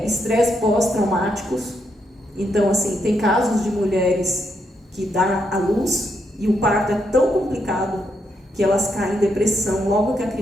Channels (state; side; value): normal; both; correlation 0.79